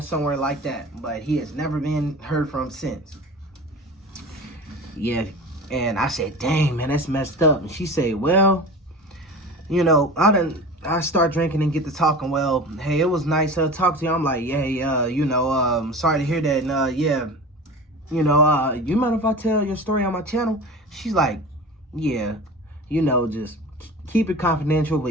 somewhere like that, but he has never been heard from since. Yeah, and I said, dang, man, that's messed up. And she said, well, I done I start drinking and get to talking. Well, hey, it was nice talking to you. I'm like, yeah, sorry to hear that. And yeah, you mind if I tell your story on my channel? She's like, yeah, just keep it confidential,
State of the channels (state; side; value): normal; both; correlation 0.34